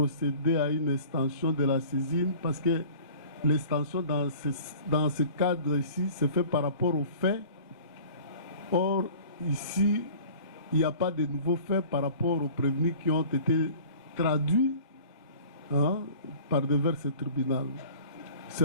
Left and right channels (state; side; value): inverted; both; correlation -0.45